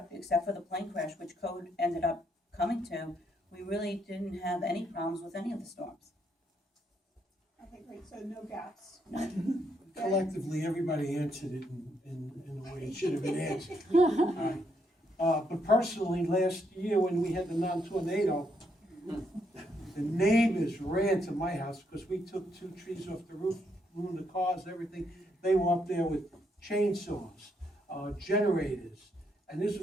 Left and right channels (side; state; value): both; normal; correlation 0.76